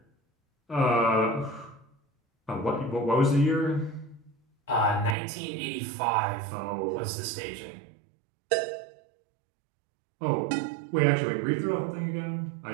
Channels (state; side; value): drops out; left; at 5.2 s